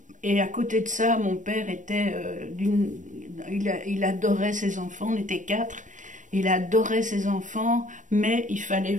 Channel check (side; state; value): left; late; 0.37 ms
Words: et à côté de ça, mon père était il adorait ses enfants, on était quatre, il adorait ses enfants, mais il fallait